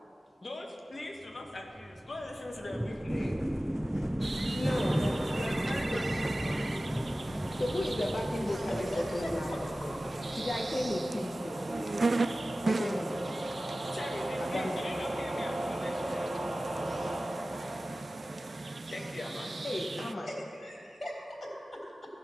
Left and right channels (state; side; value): normal; both; correlation 0.96